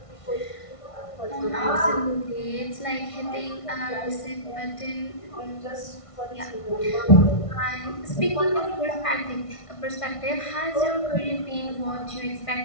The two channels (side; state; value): right; late; 1.5 ms